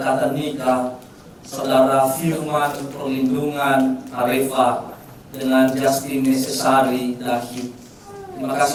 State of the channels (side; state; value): both; identical; correlation 1.00